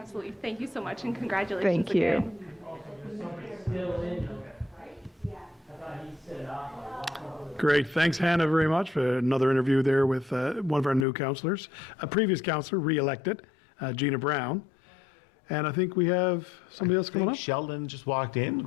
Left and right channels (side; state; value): right; drops out; at 11.1 s